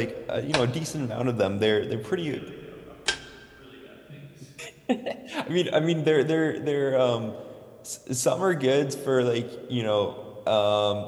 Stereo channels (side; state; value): both; identical; correlation 1.00